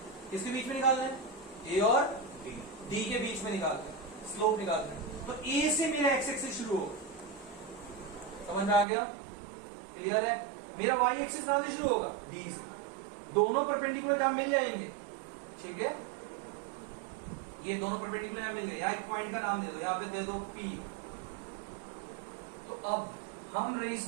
किसके बीच में निकालना है? ए और डी के बीच में निकालना है, स्लोप निकालना है। तो ए से मेरा एक्स एक्सिस शुरू होगा, समझ में आ गया? क्लियर है? मेरा वाई एक्सिस कहां से शुरू होगा? डी से। दोनों परपेंडिकुलर जहां मिल जाएंगे, ठीक है, ये दोनों परपेंडिकुलर यहां मिल गए। यहां एक पॉइंट का नाम दे दो, यहां पे दे दो P। तो अब हम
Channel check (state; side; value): drops out; left; at 8.8 s